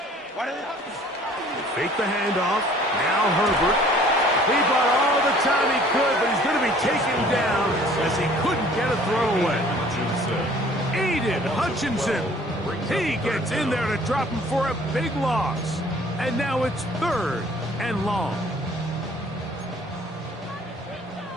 Fake the handoff. Now Herbert. He bought all the time he could, but he's going to be taken down as he couldn't get a throw away. Aiden Hutchinson. He gets in there to drop him for a big loss. And now it's 3rd and long.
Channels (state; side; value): normal; both; correlation 0.54